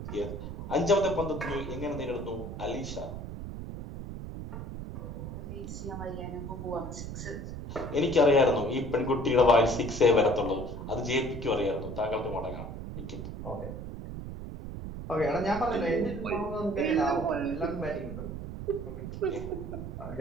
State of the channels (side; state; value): right; noise; rumble, 8 dB below the sound